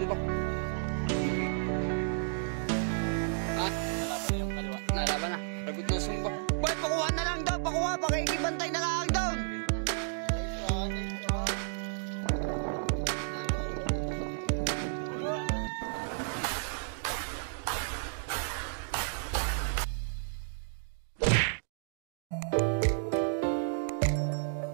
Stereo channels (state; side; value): silent; left; digital silence